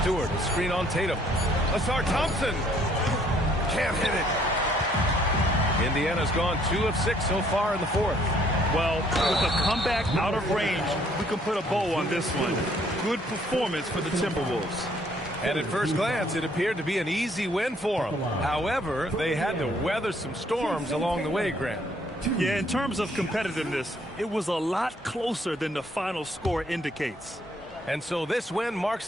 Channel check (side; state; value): both; normal; correlation 0.64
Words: Stewart, screen on Tatum. Asar Thompson. Can't hit it. Indiana's gone 2 of 6 so far in the fourth. Well, with a comeback out of range, we can put a bow on this one. Good performance for the Timberwolves. And at first glance, it appeared to be an easy win for them. However, they had to weather some storms along the way, Grant. Yeah, in terms of competitiveness, it was a lot closer than the final score indicates. And so this win